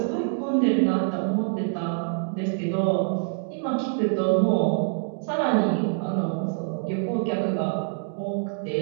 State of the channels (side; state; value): left; silent; 61 dB below the other